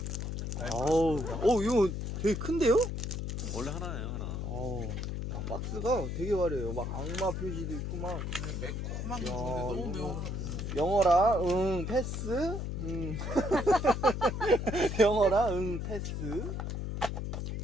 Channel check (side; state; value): left; noise; hum, 3 dB below the sound